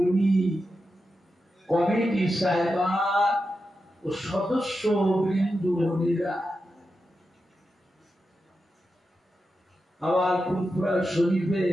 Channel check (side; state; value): both; normal; correlation 0.89